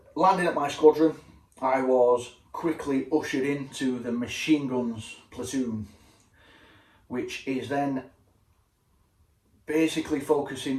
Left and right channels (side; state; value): both; identical; correlation 1.00